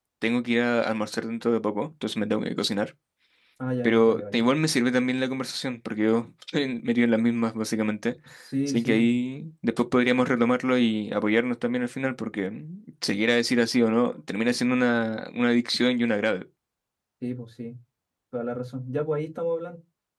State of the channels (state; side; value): identical; both; correlation 1.00